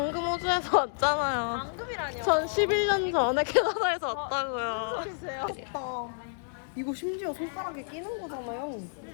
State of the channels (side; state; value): right; silent; digital silence